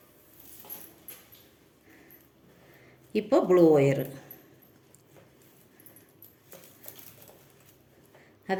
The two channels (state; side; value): identical; both; correlation 1.00